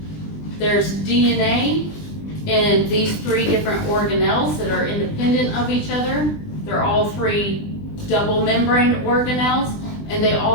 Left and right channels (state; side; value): late; right; 20 ms